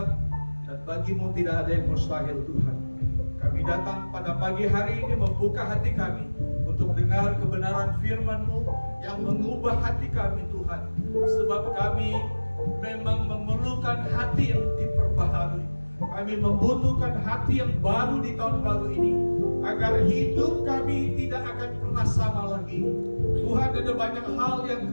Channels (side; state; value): both; inverted; correlation -1.00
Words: dan bagimu tidak ada yang mustahil, Tuhan. Kami datang pada pagi hari ini membuka hati kami untuk dengar kebenaran firman-Mu yang mengubah hati kami, Tuhan. Sebab kami memang memerlukan hati yang diperbaharui. Kami membutuhkan hati yang baru di tahun baru ini, agar hidup kami tidak akan pernah sama lagi. Tuhan, ada banyak hal yang